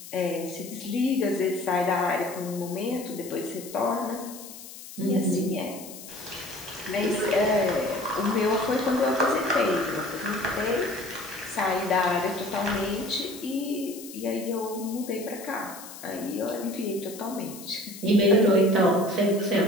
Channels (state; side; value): noise; left; hiss, 14 dB below the sound